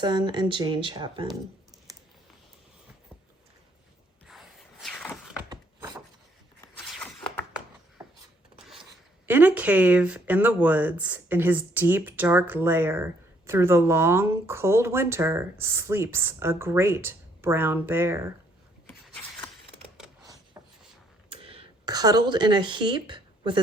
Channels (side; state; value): both; normal; correlation 0.67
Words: and Jane Chapman. In a cave in the woods, in his deep, dark lair, through the long, cold winter, sleeps a great brown bear. Cuddled in a heap, with